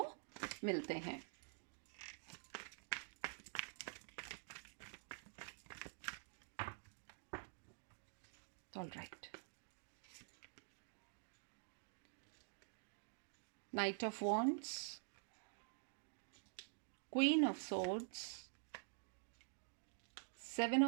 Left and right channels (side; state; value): left; silent; digital silence